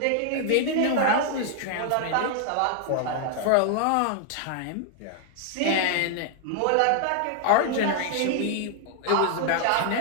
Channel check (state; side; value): different; both; correlation 0.00